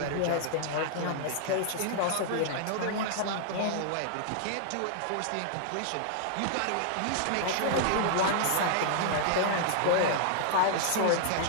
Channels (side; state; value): both; different; correlation 0.00